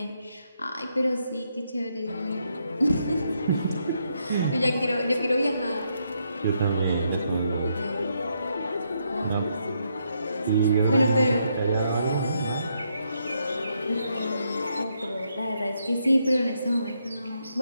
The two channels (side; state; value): both; inverted; correlation -0.78